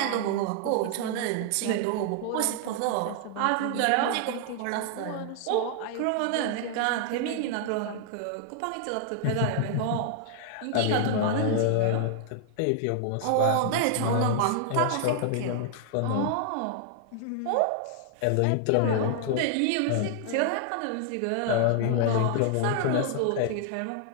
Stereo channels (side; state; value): both; different; correlation 0.00